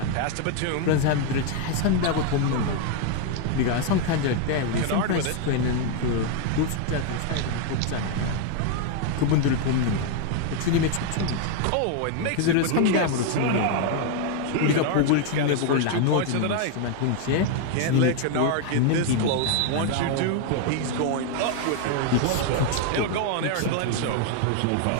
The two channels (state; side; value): different; both; correlation 0.01